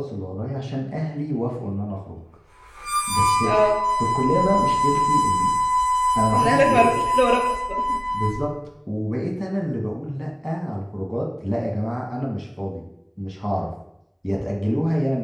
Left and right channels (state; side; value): identical; both; correlation 1.00